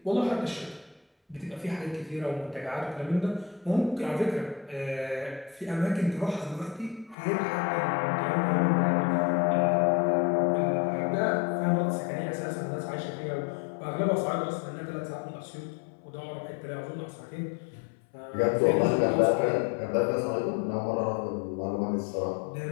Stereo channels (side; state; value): right; drops out; at 7.2 s